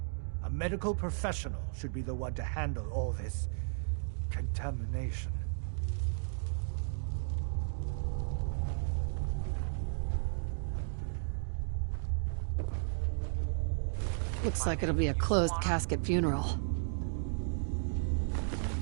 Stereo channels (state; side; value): silent; left; digital silence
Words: A medical professional should be the one to handle all this contamination. Looks like it'll be a closed casket funeral.